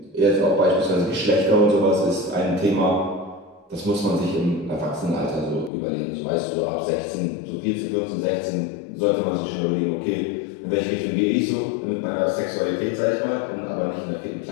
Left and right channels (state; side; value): drops out; right; at 5.7 s